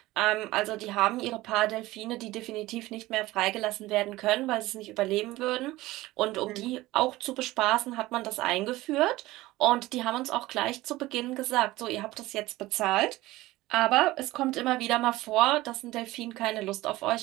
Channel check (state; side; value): quieter; left; 18.2 dB